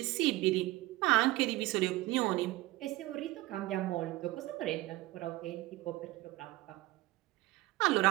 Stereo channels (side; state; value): left; quieter; 18.8 dB